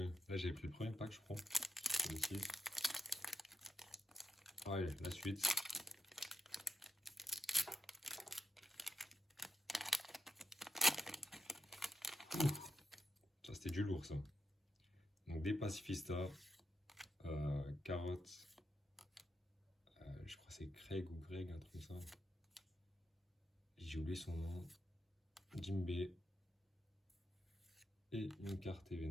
Là, j'ai pris le premier pack, je crois. Celui-ci. Ouais, la suite. Ça, c'était du lourd, ça. Donc, des pacifistas, carottes. Je crois que c'est Craig ou Greg, un truc comme ça. J'ai oublié son nom. Jimbei. Et une carte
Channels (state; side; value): normal; both; correlation 0.85